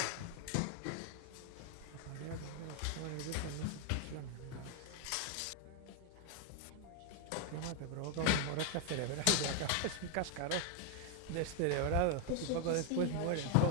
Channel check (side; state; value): both; different; correlation 0.00